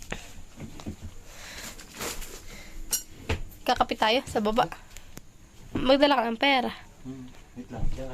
Kakapit tayo sa baba. Magdala ka ng pera. Wait lang. Diyan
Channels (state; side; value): identical; both; correlation 1.00